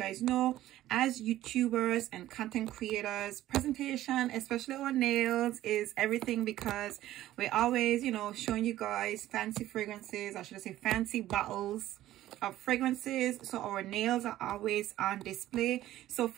know, as YouTubers and content creators, presentation, especially our nails, is everything, because we're always, showing you guys fancy fragrances, or should I say fancy bottles of fragrances. So our nails are always on display. So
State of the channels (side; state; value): left; quieter; 14.2 dB